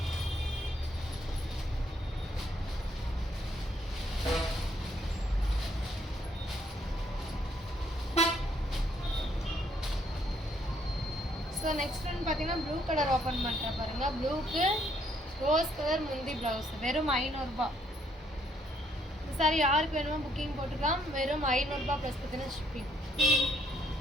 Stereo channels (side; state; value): both; normal; correlation 0.69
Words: ஸோ நெக்ஸ்ட் ஒன் பார்த்தீங்கன்னா ப்ளூ கலர் ஓப்பன் பண்ணுறேன் பாருங்கள். ப்ளூக்கு ரோஸ் கலர் முந்தி ப்ளவுஸ். வெறும் 500 ரூபாய். சாரி யாருக்கு வேணுமோ புக்கிங் போட்டுக்கலாம். வெறும் 500 ரூபாய் ப்ளஸ் பார்த்தீங்கன்னா ஷிப்பிங்.